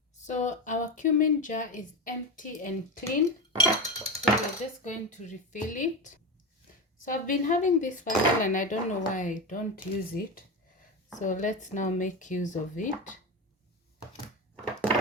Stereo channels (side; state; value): both; normal; correlation 0.19